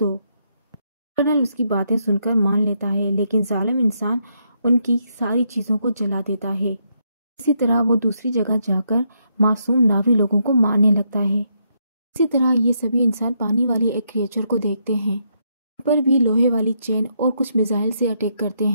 कर्नल उसकी बातें सुनकर मान लेता है, लेकिन जालिम इंसान उनकी सारी चीज़ों को जला देता है। इसी तरह वो दूसरी जगह जाकर मासूम नावी लोगों को मारने लगता है। इसी तरह ये सभी इंसान पानी वाले एक क्रिएचर को देखते हैं, पर भी लोहे वाली चेन और कुछ मिसाइल से अटैक करते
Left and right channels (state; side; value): inverted; both; correlation -0.77